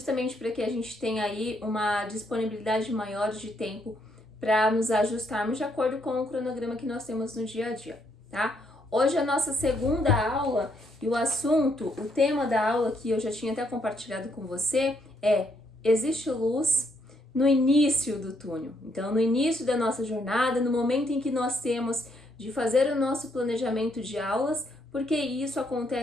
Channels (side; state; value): both; normal; correlation 0.74